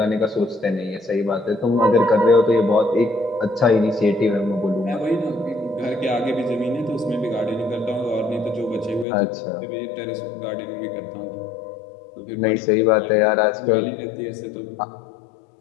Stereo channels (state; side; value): drops out; right; at 9.1 s